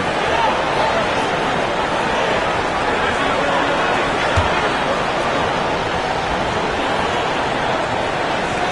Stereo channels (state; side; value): identical; both; correlation 1.00